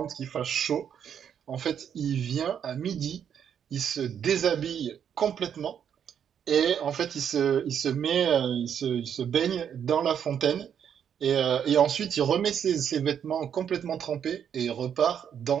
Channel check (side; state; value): left; quieter; 8.5 dB